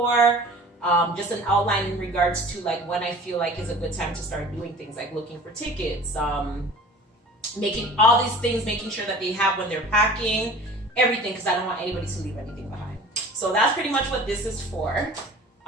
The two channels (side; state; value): both; normal; correlation 0.43